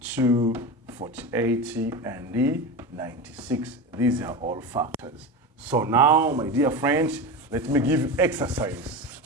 48, and 96. These are all factors. So now, my dear friends, let me give you exercise.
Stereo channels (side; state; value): both; normal; correlation 0.24